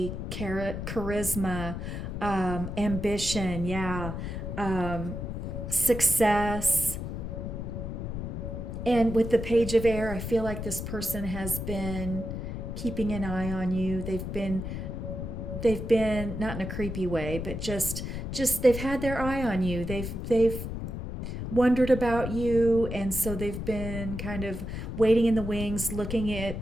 charisma, ambition, yeah, success. And with the Page of Air, I feel like this person has been keeping an eye on you. They've been not in a creepy way, but just they've had their eye on you. They've wondered about you, and so they've been kind of waiting in the wings, looking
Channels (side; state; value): left; noise; rumble, 5 dB below the sound